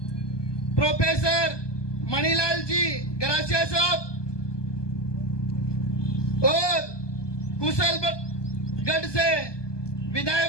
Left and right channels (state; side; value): late; right; 1.2 ms